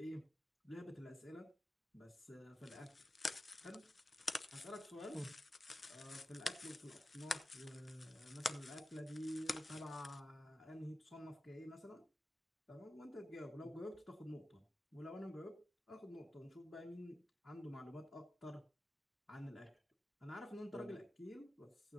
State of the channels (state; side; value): normal; both; correlation 0.93